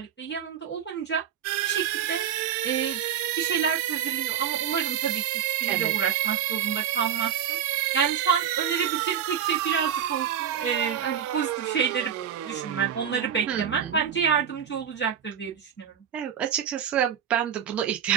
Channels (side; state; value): left; quieter; 8.8 dB